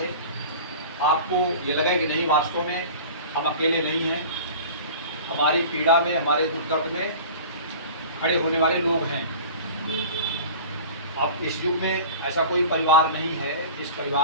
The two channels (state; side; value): inverted; both; correlation -0.39